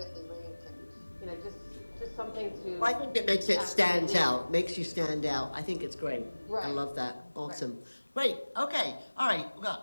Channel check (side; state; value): both; inverted; correlation -1.00